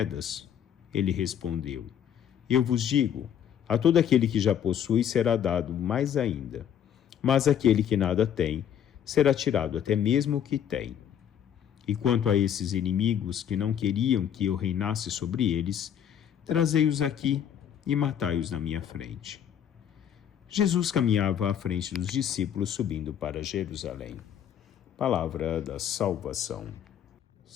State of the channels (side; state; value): right; quieter; 9.4 dB